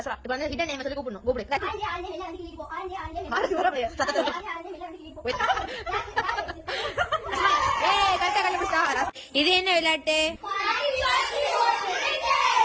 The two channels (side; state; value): both; identical; correlation 1.00